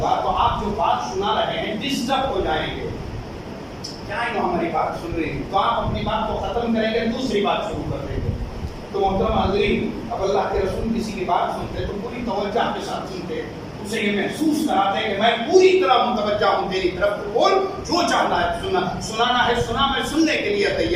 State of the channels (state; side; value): identical; both; correlation 1.00